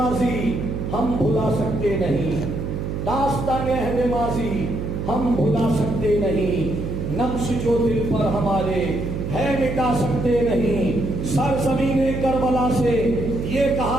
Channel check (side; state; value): right; noise; hum, 4 dB below the sound